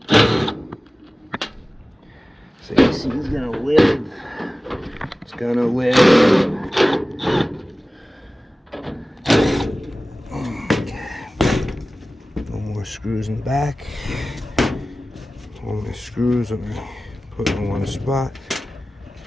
So AC is gonna live. It's gonna live. Okay. No more screws in the back. All my screws I'm gonna put in one spot.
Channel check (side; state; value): both; normal; correlation 0.97